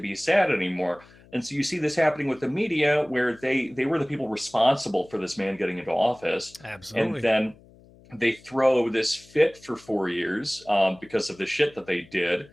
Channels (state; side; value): noise; left; hum, 25 dB below the sound